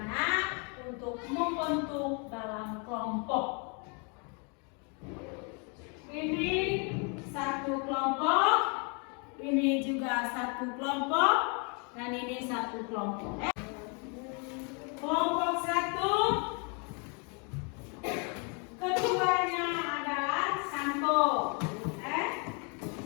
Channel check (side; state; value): right; quieter; 35.6 dB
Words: untuk membentuk dalam kelompok. Ini satu kelompok, ini juga satu kelompok, dan ini satu kelompok. Kelompok satu, ketuanya adalah Santo.